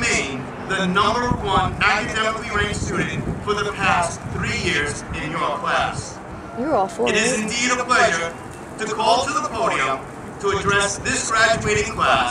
the #1 academically ranked student for the past 3 years in your class. You're all for it. It is indeed a pleasure to call to the podium to address this graduating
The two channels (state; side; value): identical; both; correlation 1.00